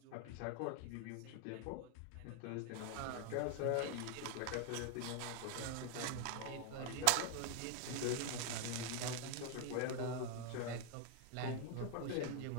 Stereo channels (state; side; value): different; both; correlation 0.00